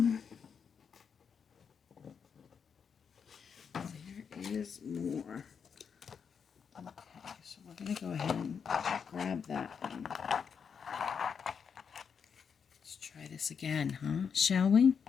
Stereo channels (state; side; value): quieter; right; 6.6 dB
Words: There is more. Okay, so we're going to go ahead and grab that one. Let's try this again, huh? Shall we?